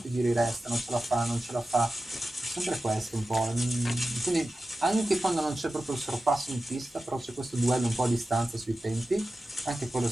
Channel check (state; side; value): normal; both; correlation 0.94